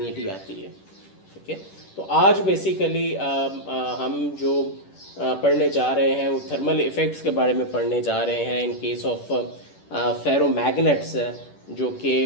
आती है। ठीक है, तो आज बेसिकली हम जो पढ़ने जा रहे हैं वो थर्मल इफ़ेक्ट्स के बारे में पढ़ने जा रहे हैं इन केस ऑफ फेरोमैग्नेट्स जो कि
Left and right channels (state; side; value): late; right; 10 ms